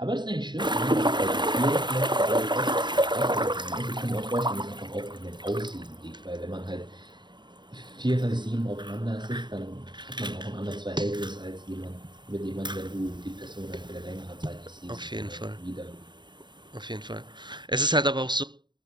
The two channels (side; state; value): left; late; 0.22 ms